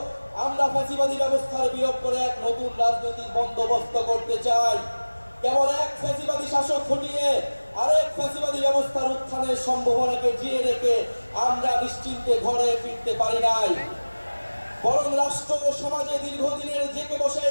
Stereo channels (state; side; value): inverted; both; correlation -1.00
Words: আমরা ফ্যাসিবাদী ব্যবস্থার বিলোপ করে এক নতুন রাজনৈতিক বন্দোবস্ত করতে চাই। কেবল এক ফ্যাসিবাদী শাসক হটিয়ে আরেক ফ্যাসিবাদী ব্যবস্থার উত্থানের সম্ভাবনাকে জিয়ে রেখে আমরা নিশ্চিন্তে ঘরে ফিরতে পারি নাই, বরং রাষ্ট্র ও সমাজে দীর্ঘদিনের জেঁকে বসে